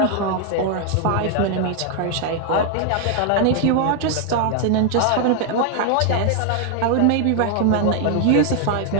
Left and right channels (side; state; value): both; different; correlation 0.00